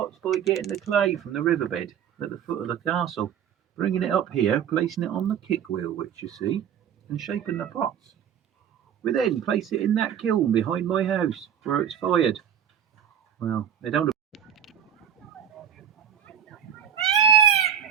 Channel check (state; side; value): quieter; left; 8.9 dB